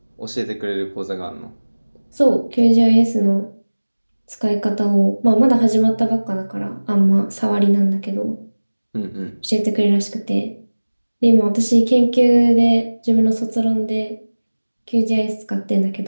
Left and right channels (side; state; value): both; inverted; correlation -1.00